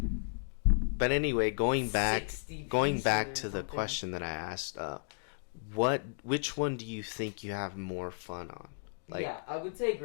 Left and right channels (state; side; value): silent; right; digital silence